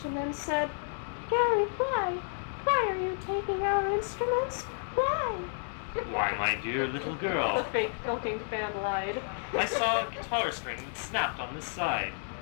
and then said, "Gary, why? Why are you taking our instruments? Why?" Why, my dear little The girl, fake Filking fan lied. I saw a guitar string that snapped on this side.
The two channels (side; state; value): right; silent; 57 dB below the other